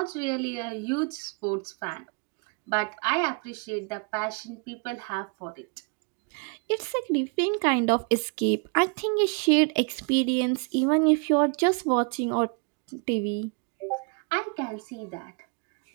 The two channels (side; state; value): left; quieter; 35.9 dB